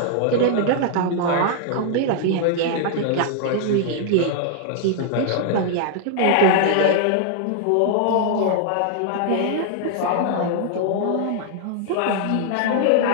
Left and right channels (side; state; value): both; different; correlation -0.01